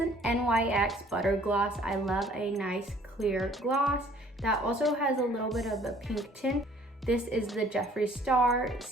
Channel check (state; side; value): normal; both; correlation 0.57